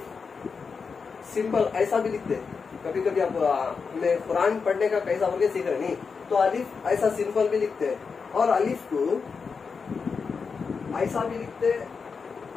सिंपल ऐसा भी लिखते हैं। कभी कभी आप हमें कुरान पढ़ने का कैसा बोल के सीख रहे नहीं, तो अलिफ ऐसा सिंपल भी लिखते हैं और अलिफ को ऐसा भी लिखते,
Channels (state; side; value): quieter; right; 5.3 dB